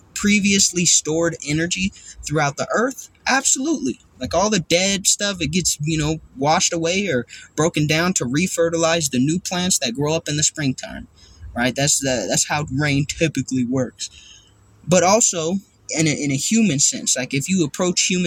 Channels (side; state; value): both; identical; correlation 1.00